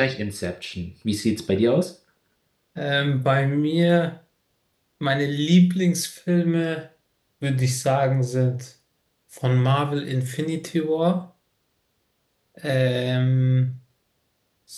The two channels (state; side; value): identical; both; correlation 1.00